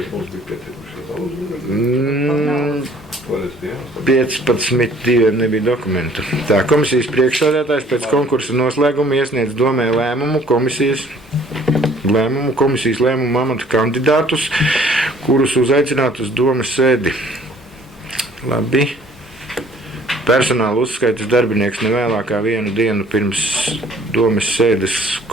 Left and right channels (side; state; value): both; normal; correlation 0.56